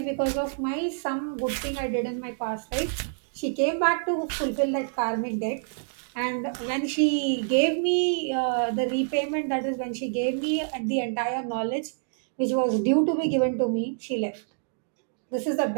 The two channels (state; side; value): silent; left; digital silence